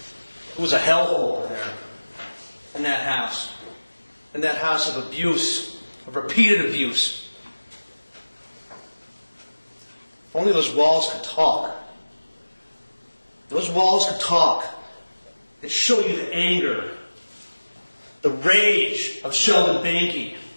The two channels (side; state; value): both; inverted; correlation -1.00